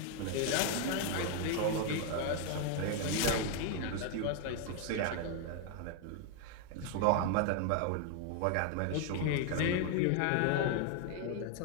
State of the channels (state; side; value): different; both; correlation 0.00